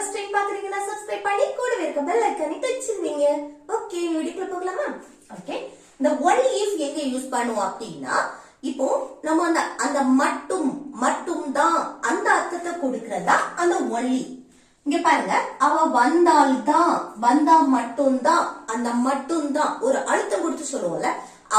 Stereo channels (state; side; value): identical; both; correlation 1.00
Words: டைம் பாக்குறீங்கன்னா சப்ஸ்கிரைப் பண்ணி கூடவே இருக்க பெல் ஐகானை டச் பண்ணுங்க. ஓகே, வீடியோக்குள்ள போகலாமா? ஓகே, இந்த ஒன்லி இஃப் எங்க யூஸ் பண்ணுவோம் அப்படின்னா, இப்போ நம்ம அந்த மட்டும் தான் அந்த அர்த்தத்தை கொடுக்கறதா அந்த ஒன்லி. இங்க பாருங்க, அவ வந்தால்தான், வந்தா மட்டும்தான், அந்த மட்டும்தான் ஒரு அழுத்தம் கொடுத்து சொல்லுவோம்ல,